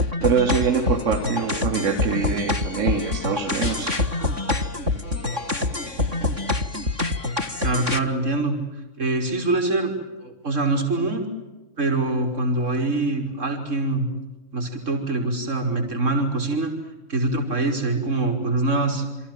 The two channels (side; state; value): left; late; 3.6 ms